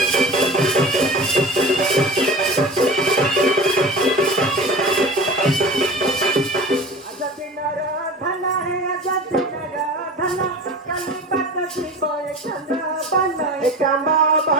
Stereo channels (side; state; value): both; normal; correlation 0.35